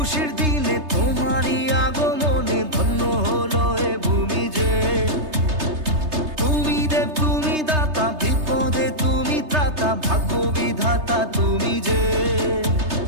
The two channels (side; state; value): left; late; 3.3 ms